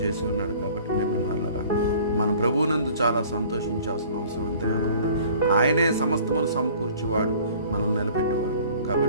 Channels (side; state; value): both; inverted; correlation -0.50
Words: ఉన్నాడు. కాబట్టి ప్రేమైన వాళ్ళరా, మన ప్రభువునందు చాలా సంతోషించాల్సిన అవసరం ఎంతగానో ఉంది. ఆయనే సమస్తమును సమకూర్చేవాడు, మనం నిలబెట్టేవాడు.